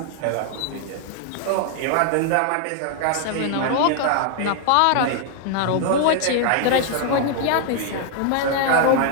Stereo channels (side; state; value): both; different; correlation 0.00